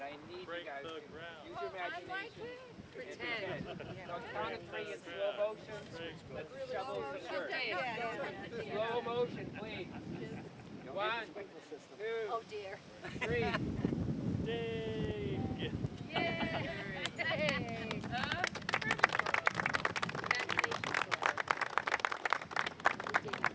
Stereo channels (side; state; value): both; identical; correlation 1.00